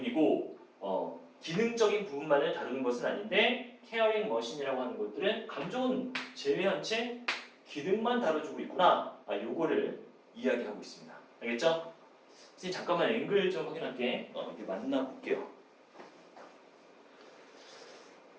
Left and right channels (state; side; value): identical; both; correlation 1.00